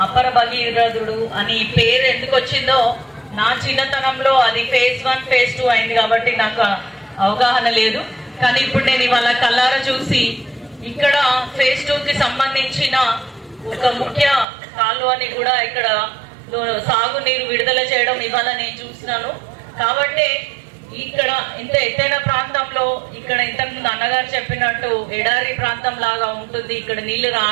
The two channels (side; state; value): left; drops out; at 14.5 s